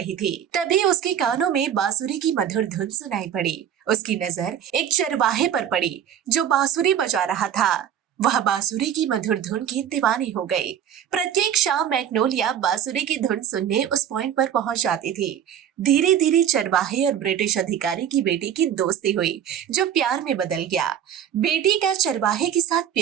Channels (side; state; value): left; quieter; 9.5 dB